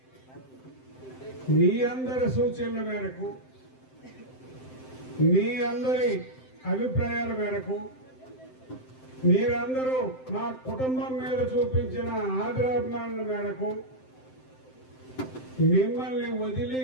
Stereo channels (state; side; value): late; right; 7.7 ms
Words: మీ అందరి సూచనల మేరకు, మీ అందరి అభిప్రాయాల మేరకు, మీరందరూ మా కుటుంబం మీద చూపించిన ఆదరాభిమానాల మేరకు మిమ్మల్ని